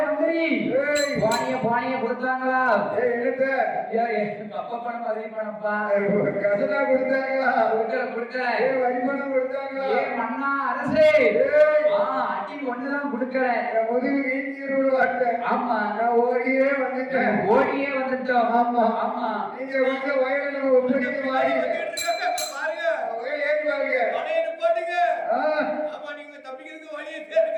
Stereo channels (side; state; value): both; identical; correlation 1.00